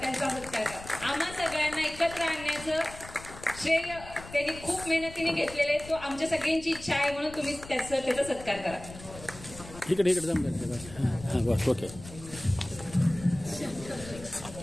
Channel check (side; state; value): left; noise; rumble, 15 dB below the sound